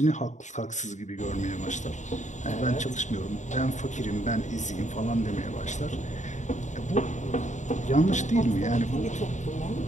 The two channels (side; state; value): right; late; 0.35 ms